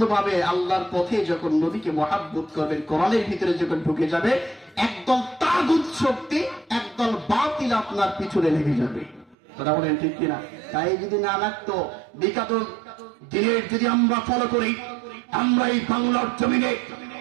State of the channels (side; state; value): left; drops out; at 9.3 s